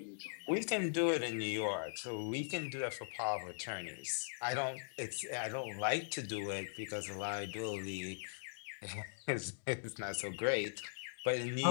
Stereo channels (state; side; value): silent; right; digital silence